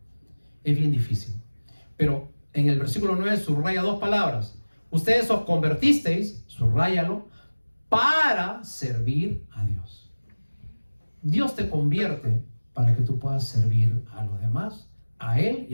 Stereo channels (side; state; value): both; inverted; correlation -1.00